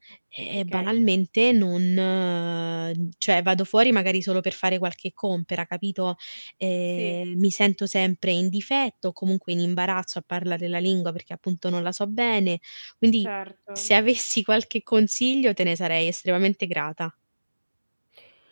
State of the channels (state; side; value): inverted; both; correlation -1.00